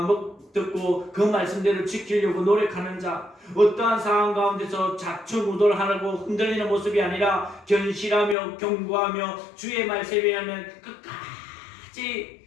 듣고 그 말씀대로 지키려고 노력하는 자. 어떠한 상황 가운데서 좌충우돌하고 흔들리는 모습이 아니라 견실하며 경고하며 주의 말씀에 의하면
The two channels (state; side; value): drops out; right; at 8.3 s